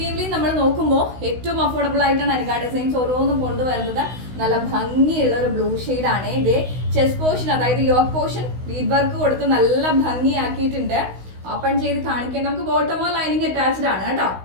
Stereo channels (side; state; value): left; late; 16 ms